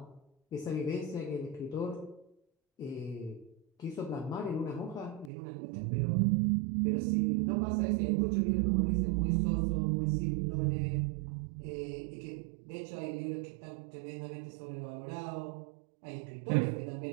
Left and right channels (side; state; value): left; drops out; at 5.3 s